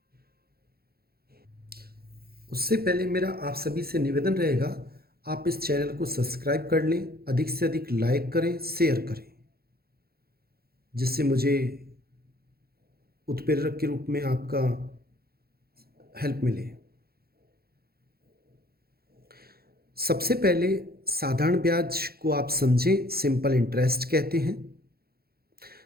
उससे पहले मेरा आप सभी से निवेदन रहेगा, आप इस चैनल को सब्सक्राइब कर लें, अधिक से अधिक लाइक करें, शेयर करें, जिससे मुझे उत्प्रेरक के रूप में आपका हेल्प मिले। सबसे पहले साधारण ब्याज को आप समझें, सिंपल इंटरेस्ट कहते हैं।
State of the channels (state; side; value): late; left; 0.45 ms